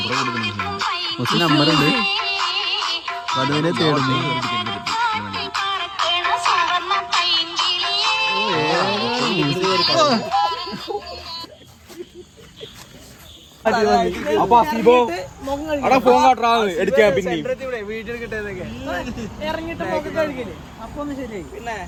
മൂസിന് നമ്പറുണ്ട് വധുവിനെ തേടുന്നു അപ്പൊ അസീബോ അവിടെ ഫോൺ കാട്ടാ എടുക്കാൻ പിന്നെ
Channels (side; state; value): both; identical; correlation 1.00